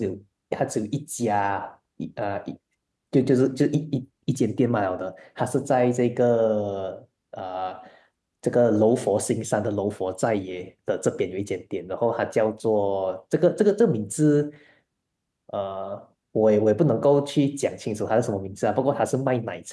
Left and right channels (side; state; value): both; identical; correlation 1.00